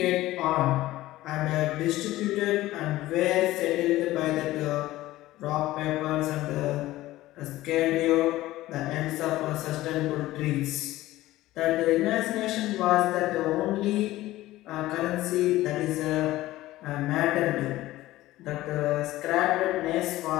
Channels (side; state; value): right; quieter; 16.4 dB